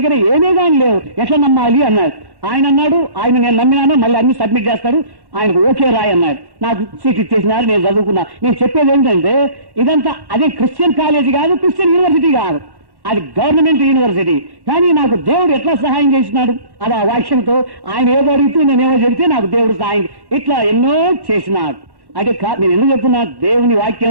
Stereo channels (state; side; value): late; left; 1.1 ms